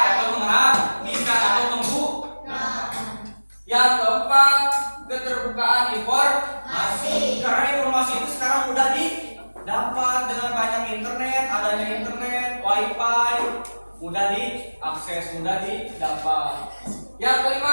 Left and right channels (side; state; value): both; inverted; correlation -1.00